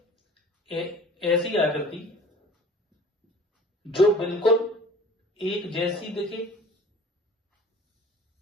ऐसी आकृति जो बिल्कुल एक जैसी दिखे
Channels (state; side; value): normal; both; correlation 0.46